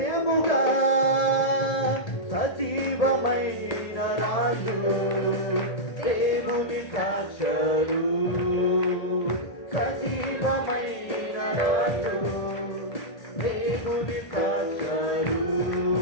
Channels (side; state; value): right; late; 1.8 ms